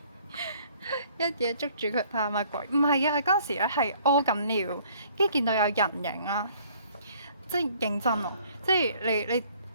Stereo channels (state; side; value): inverted; both; correlation -0.58